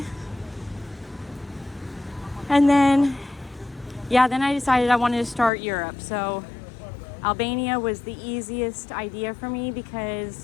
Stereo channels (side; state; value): right; drops out; at 5.5 s